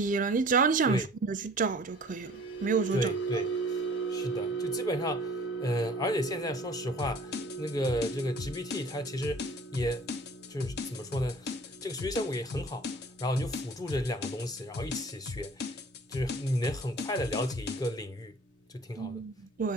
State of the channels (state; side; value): normal; both; correlation 0.49